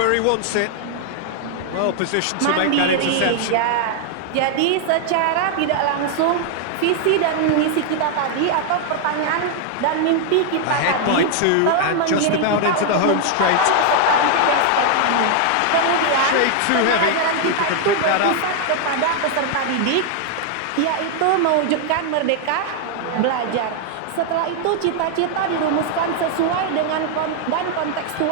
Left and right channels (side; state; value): both; different; correlation 0.00